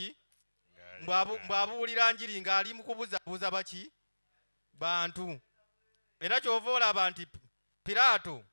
Mbw'abuulira njiri ng'ali mu kubuzabuza baki? Bantu. Era kyova olaba nti Piraato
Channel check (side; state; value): both; inverted; correlation -1.00